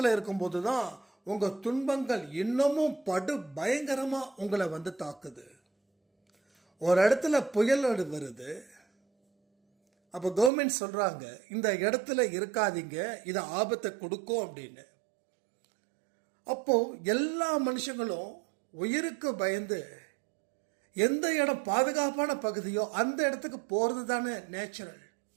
இருக்கும்போது தான் உங்கள் துன்பங்கள் இன்னமும் படு பயங்கரமாக உங்களை வந்து தாக்குது. ஒரு இடத்துல புயல் வருது, அப்போ கவர்மெண்ட் சொல்கிறாங்க இந்த இடத்துல இருக்காதீங்க, இது ஆபத்தை கொடுக்கும் அப்படின்னு. அப்போது எல்லா மனுஷங்களும் உயிருக்கு பயந்து எந்த இடம் பாதுகாப்பான பகுதியோ அந்த இடத்துக்கு போகிறது தானே நேச்சுரல்.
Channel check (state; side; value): drops out; left; at 10.5 s